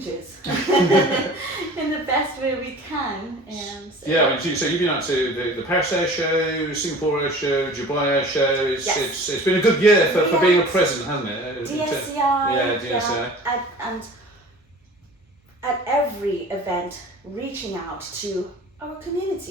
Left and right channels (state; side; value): normal; both; correlation 0.43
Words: in the best way we can. So you've been out to the Paris Air Show, Singapore Air Show, Dubai Air Show. It's been a good year for being a president, hasn't it? DSCI. And at every event, reaching out to our